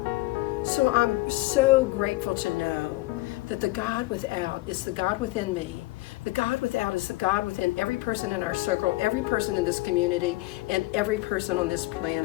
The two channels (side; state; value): right; quieter; 20.5 dB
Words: So I'm so grateful to know that the God without is the God within me. The God without is the God within every person in our circle, every person in this community, and every person on this